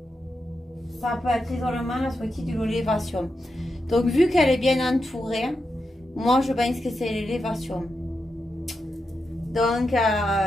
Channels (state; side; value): normal; both; correlation 0.87